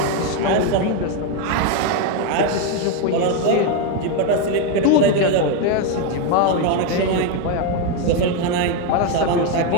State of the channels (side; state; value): both; different; correlation 0.02